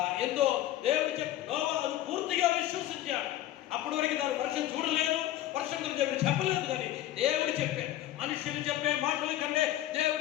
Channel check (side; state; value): right; quieter; 13.8 dB